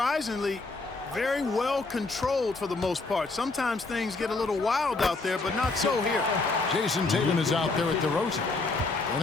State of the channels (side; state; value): right; quieter; 3.6 dB